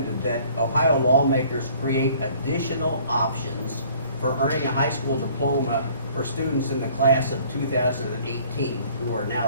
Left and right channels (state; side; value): inverted; both; correlation -0.55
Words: that Ohio lawmakers create additional options for earning a high school diploma for students in the class of 2018 who are now